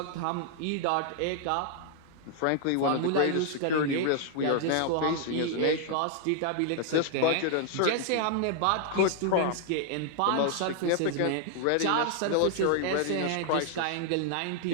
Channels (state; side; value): different; both; correlation 0.00